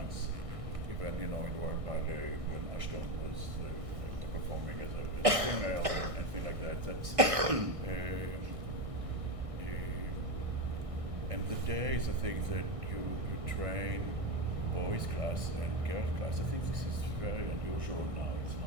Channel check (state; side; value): late; left; 1.6 ms